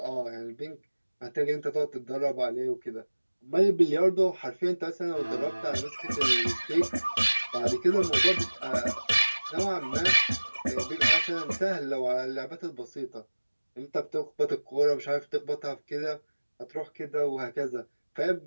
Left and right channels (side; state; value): both; inverted; correlation -1.00